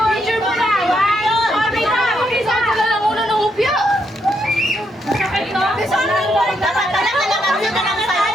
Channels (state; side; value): normal; both; correlation 0.77